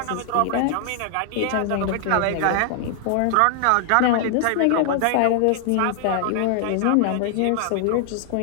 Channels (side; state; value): both; different; correlation 0.00